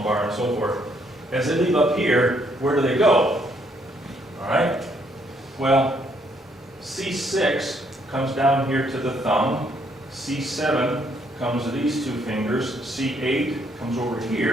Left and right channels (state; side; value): normal; both; correlation 0.70